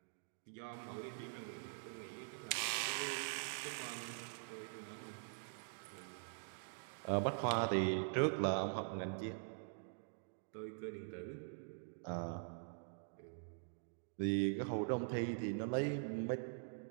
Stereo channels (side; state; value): left; silent; digital silence